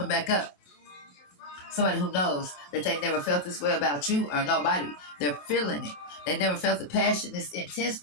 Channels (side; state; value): right; late; 28 ms